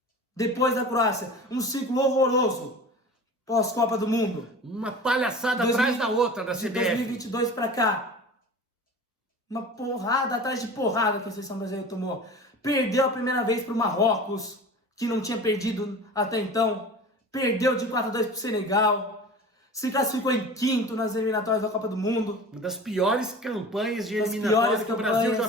Depois da Croácia, um ciclo horroroso pós-Copa do Mundo. Uma palhaçada atrás da outra da CBF. De 2022 para cá. Uma porrada atrás de porrada que a seleção brasileira tomou. Perdeu a primeira vez para o Marrocos, que não tinha perdido até então. Perdeu de 4-2 para o Senegal. Se classificou em quinto nas eliminatórias da Copa do Mundo. Uma das piores campanhas de eliminatórias que o Brasil já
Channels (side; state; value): both; normal; correlation 0.37